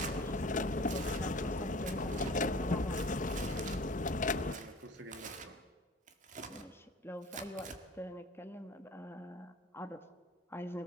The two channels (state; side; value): normal; both; correlation 0.43